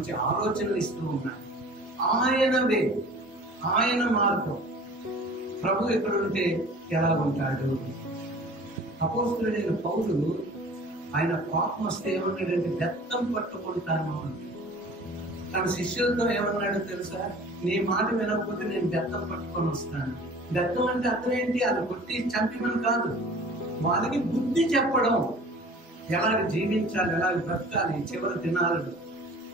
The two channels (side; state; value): both; normal; correlation 0.45